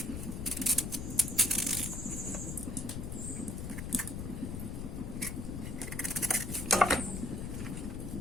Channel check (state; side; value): noise; left; rumble, 4 dB below the sound